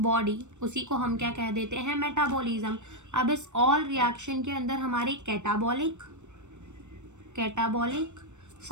body, उसी को हम क्या कह देते हैं, मेटाबॉलिज्म। अब इस ऑल रिएक्शन के अंदर हमारी कैटाबॉलिक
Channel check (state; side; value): late; left; 0.84 ms